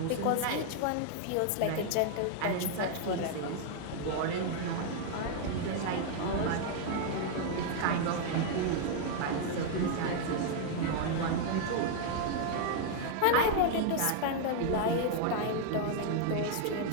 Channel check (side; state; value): both; different; correlation 0.00